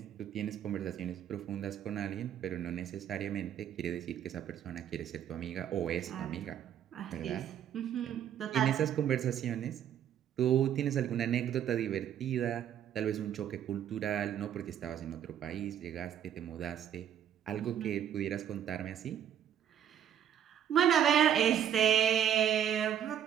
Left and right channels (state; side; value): quieter; left; 9.7 dB